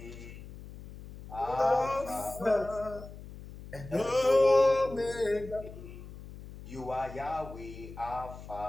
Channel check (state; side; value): noise; left; hum, 14 dB below the sound